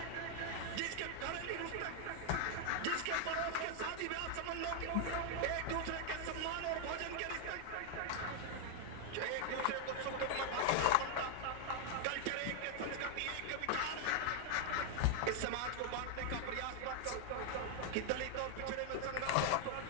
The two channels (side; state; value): both; different; correlation 0.00